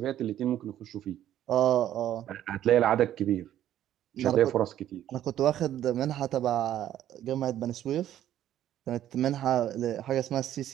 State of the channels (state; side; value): quieter; left; 11.8 dB